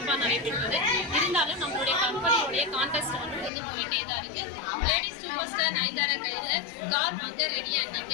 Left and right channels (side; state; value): right; drops out; at 3.5 s